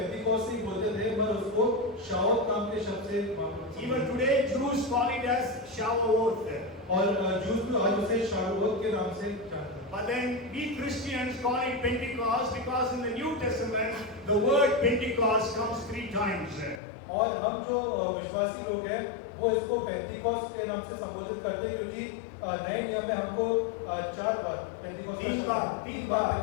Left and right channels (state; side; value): drops out; right; at 16.8 s